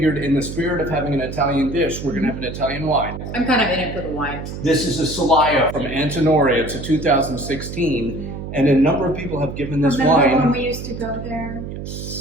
in the spirit of having an Italian dish, we're going to have an Italian wine. I'm kind of in it for the wine. This is a Solaya from Antinori. It's a 2016. And a number of people have given this wine. Remember when we used to go there?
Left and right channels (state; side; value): noise; right; hum, 8 dB below the sound